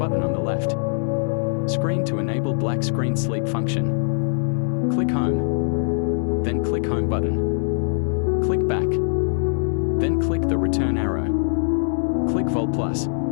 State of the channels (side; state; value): right; silent; digital silence